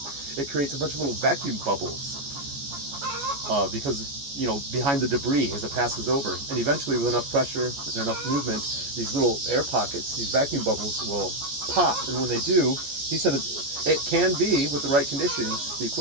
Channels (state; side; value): late; left; 14 ms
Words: it creates a bunch of little vacuum bubbles because behind the debris as it passes over, and eventually with enough pressure and enough movement, these little air pockets, these vacuum bubbles will pop. And when they do, he said it can be, with the right conditions, the